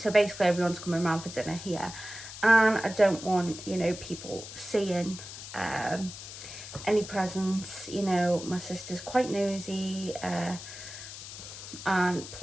basically everyone's coming around for dinner here, and I don't want, you know, people seeing any presents. You know, my sister's quite nosy, and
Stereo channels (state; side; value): noise; left; hiss, 12 dB below the sound